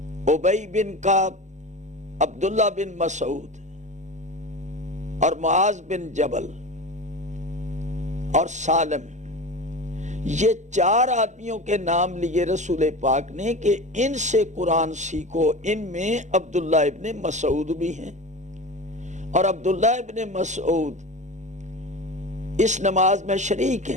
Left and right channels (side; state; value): left; late; 0.34 ms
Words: ابی بن کعب، عبداللہ بن مسعود اور معاذ بن جبل اور سالم۔ یہ 4 آدمیوں کے نام لیے رسول پاک نے کہ ان سے قرآن سیکھو۔ ان میں عبداللہ ابن مسعود بھی ہیں، اور عبداللہ ابن مسعود اس نماز میں شریک